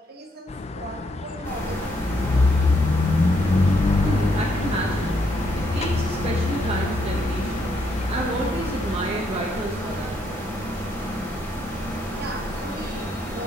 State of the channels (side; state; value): both; normal; correlation 0.75